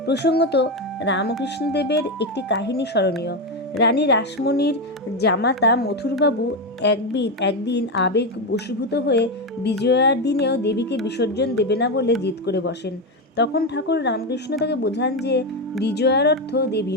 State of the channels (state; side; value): normal; both; correlation 0.11